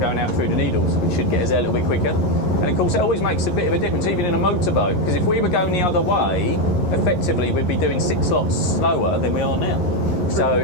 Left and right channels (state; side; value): late; right; 11 ms